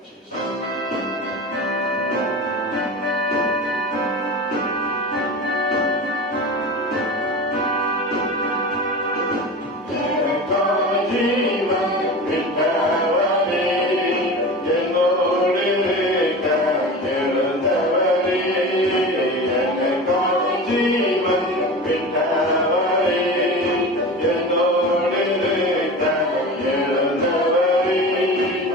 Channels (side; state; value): both; normal; correlation 0.31